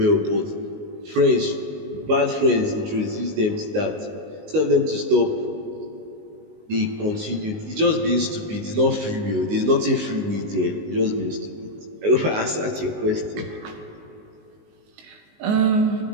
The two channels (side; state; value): left; late; 19 ms